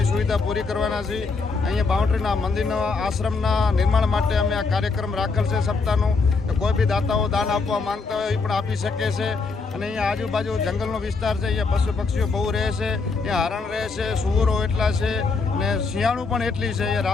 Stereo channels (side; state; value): right; quieter; 4.3 dB